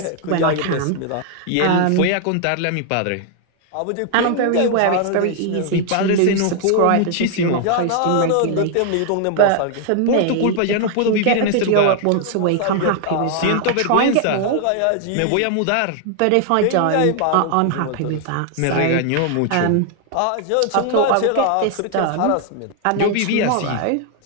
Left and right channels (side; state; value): both; different; correlation 0.00